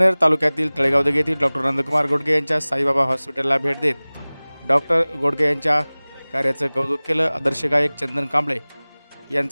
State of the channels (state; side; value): inverted; both; correlation -1.00